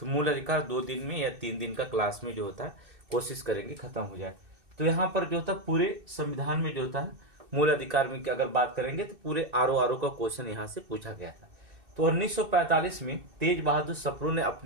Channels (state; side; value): late; left; 2.6 ms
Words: मूल अधिकार 2 दिन में या 3 दिन का क्लास में जो होता है कोशिश करेंगे खत्म हो जाए। तो यहाँ पर जो होता है पूरे संविधान में जो होता है मूल अधिकार में अगर बात करेंगे तो पूरे आरओ का क्वेश्चन यहाँ से पूछा गया था। तो 1945 में तेज बहादुर सप्रू ने